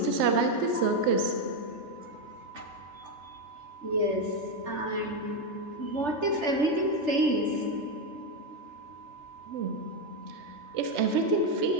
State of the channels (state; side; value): late; left; 3.4 ms